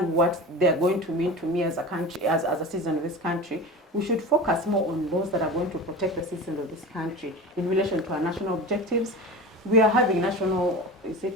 what they're going to mean to me as a country, as a citizen of this country. We should focus more on laws that are going to protect the citizens of this country in relation to our national objectives. We are having national,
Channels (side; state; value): both; normal; correlation 0.31